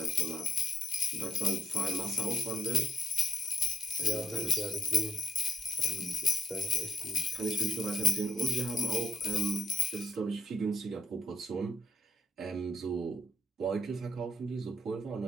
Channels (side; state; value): both; normal; correlation 0.76